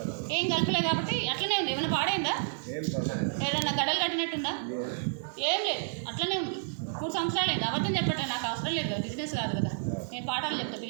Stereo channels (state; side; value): silent; left; 58 dB below the other